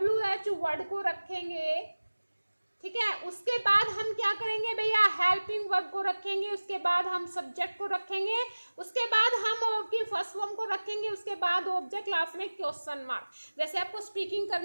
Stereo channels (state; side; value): inverted; both; correlation -1.00